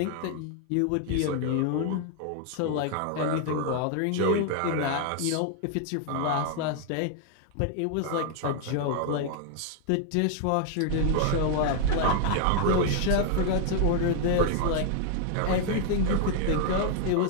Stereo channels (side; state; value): both; different; correlation 0.00